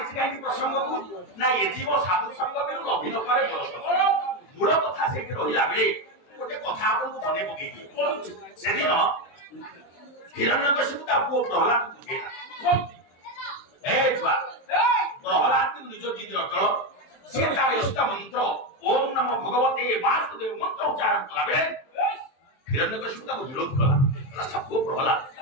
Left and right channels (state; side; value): late; right; 23 ms